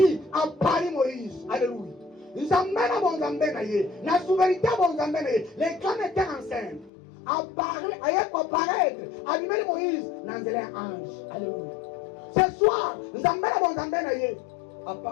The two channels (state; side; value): drops out; right; at 6.9 s